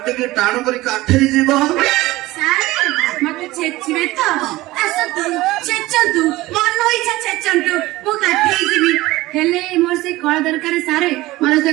ଟିକେ ଟାଣ କରି କାଠେଇ ଯିବ ସାରେ ମତେ ଛେଚିବେ ତ ଆସନ୍ତୁ ଛେଚନ୍ତୁ ମନ ଇଚ୍ଛା ଛେଚନ୍ତୁ ମୁଁ କାଠେଇ ଯିବି ହେଲେ ମୋର ସେ କଳା ଦରକାର ସାରେ ମତେ ସେ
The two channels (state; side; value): quieter; left; 18.6 dB